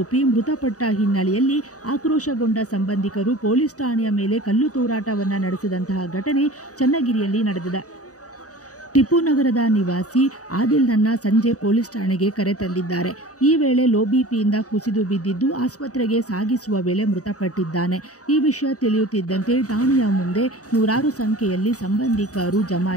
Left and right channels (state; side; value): late; right; 0.66 ms